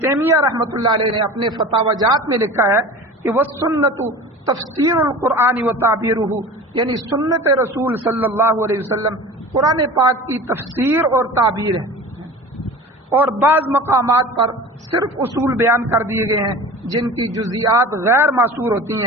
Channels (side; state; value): both; normal; correlation 0.37